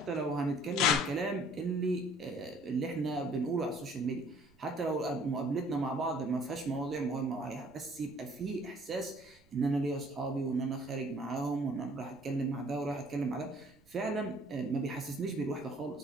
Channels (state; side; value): noise; right; rumble, 30 dB below the sound